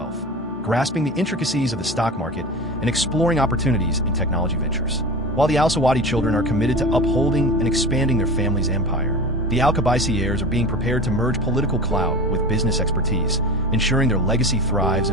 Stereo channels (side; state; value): both; normal; correlation 0.32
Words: grasping the intricacies of the stock market, and exploring opportunities in technology ventures. While the Al Sawadi children are committed to upholding and expanding their family's empire, The Al-Qabaisi heirs are being prepared to merge political clout with business expertise, ensuring their legacy thrives